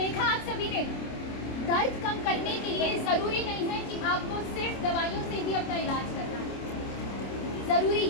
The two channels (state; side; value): late; right; 26 ms